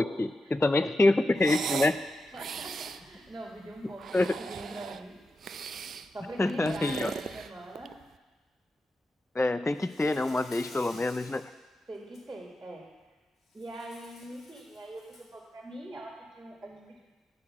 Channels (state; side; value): normal; both; correlation 0.89